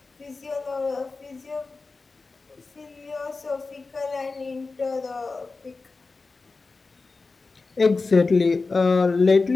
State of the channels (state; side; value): quieter; right; 3.9 dB